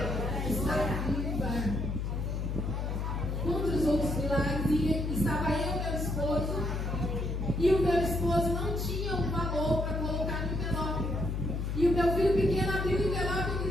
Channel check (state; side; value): noise; left; hum, 1 dB below the sound